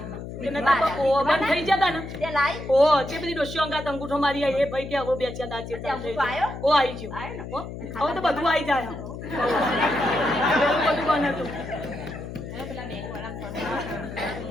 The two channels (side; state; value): left; noise; hum, 9 dB below the sound